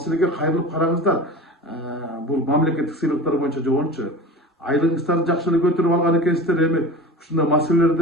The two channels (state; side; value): normal; both; correlation 0.34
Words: кайрылып караңыздар. Бул мамлекеттик сыйлыктар боюнча жогончу айлыгыңыздарды жакшы эле көтөрүп алган экенсиздер, эми ушундай